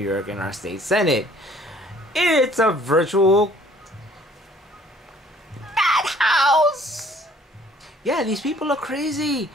York in our state senate. It's a virtual house. Yeah, these people are crazy.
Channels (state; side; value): normal; both; correlation 0.57